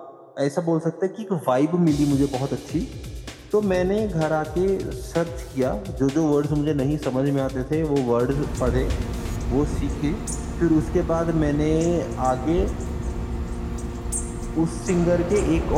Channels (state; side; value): identical; both; correlation 1.00